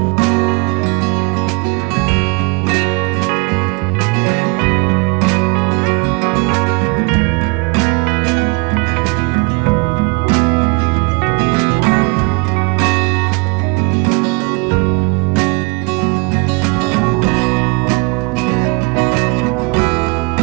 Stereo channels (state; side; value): quieter; left; 29.6 dB